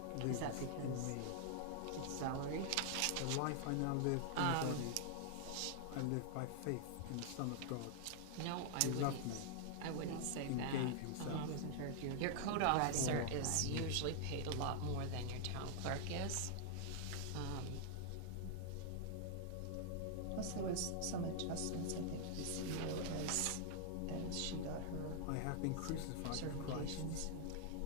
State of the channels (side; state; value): both; different; correlation -0.01